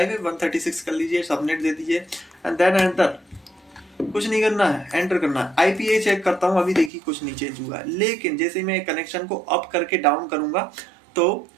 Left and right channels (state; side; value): drops out; left; at 6.9 s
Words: है, 136 कर लीजिए, सबनेट दे दीजिए एंड देन एंटर। कुछ नहीं करना है, एंटर करना है। IPA चेक करता हूँ, अभी देखिए कुछ नहीं चेंज हुआ है, लेकिन जैसे ही मैं कनेक्शन को अप करके डाउन करूंगा तो